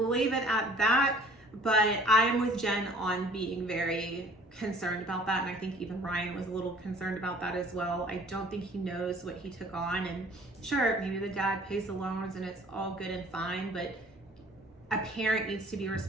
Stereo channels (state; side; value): normal; both; correlation 0.53